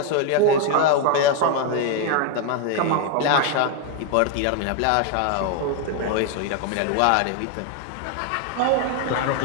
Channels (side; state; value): both; different; correlation 0.00